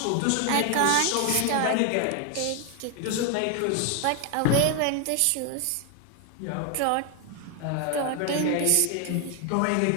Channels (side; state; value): both; different; correlation 0.01